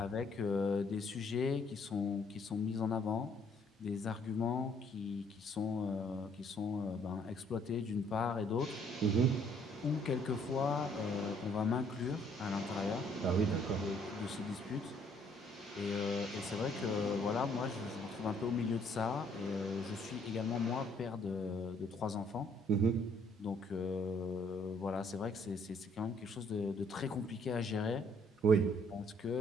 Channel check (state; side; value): normal; both; correlation 0.64